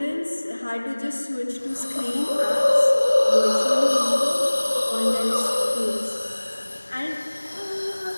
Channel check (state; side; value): inverted; both; correlation -1.00